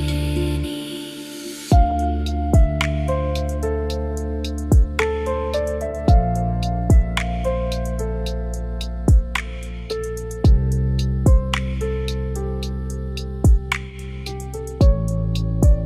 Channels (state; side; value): identical; both; correlation 1.00